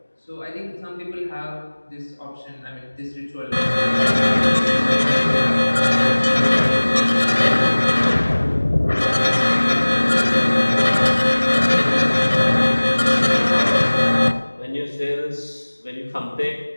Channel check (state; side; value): inverted; both; correlation -1.00